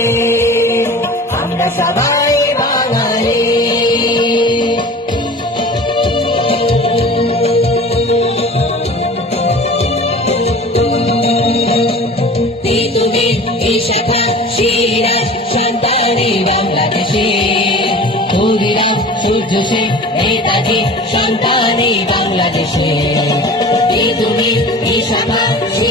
আমরা সবাই বাঙালি। পৃথিবীর বিশাখা সিরাজ সন্তানি বাংলাদেশে, ক্ষুদিরাম সূর্য সেন নেতাজি সন্তানি বাংলাদেশে। পৃথিবীর বিশাখা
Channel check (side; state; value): both; normal; correlation 0.40